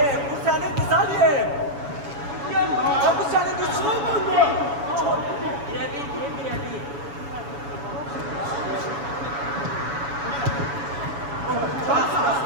bu senin kız Ali. Ya bu senin düşmanın mı? Birebir.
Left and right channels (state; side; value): late; left; 7.1 ms